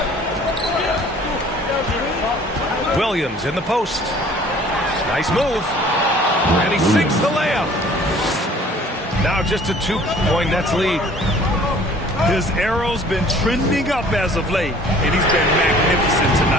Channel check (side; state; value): both; normal; correlation 0.52